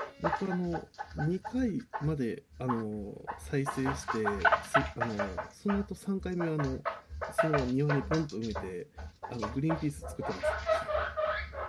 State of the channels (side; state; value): both; identical; correlation 1.00